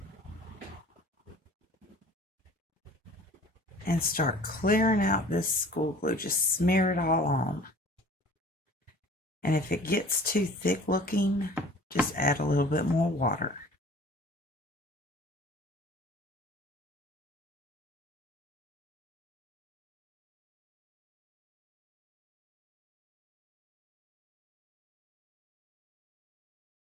And start clearing out this school glue. Just smear it all on. And if it gets too thick looking, just add a little bit more water.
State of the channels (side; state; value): both; normal; correlation 0.47